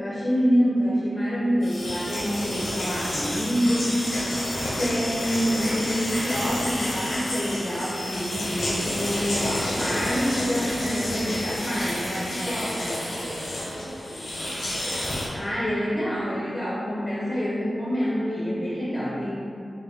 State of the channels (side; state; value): both; normal; correlation 0.95